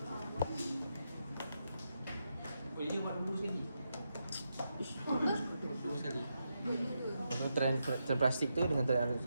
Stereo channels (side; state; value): both; inverted; correlation -0.85